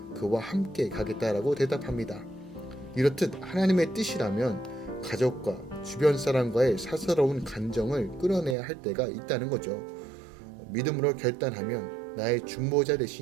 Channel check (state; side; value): drops out; left; at 8.6 s